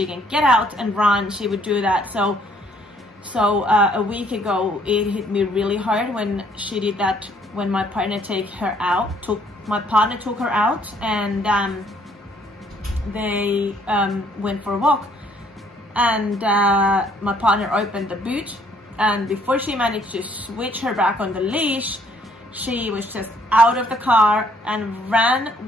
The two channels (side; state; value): both; normal; correlation 0.64